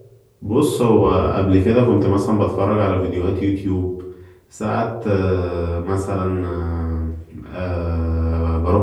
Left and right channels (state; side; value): identical; both; correlation 1.00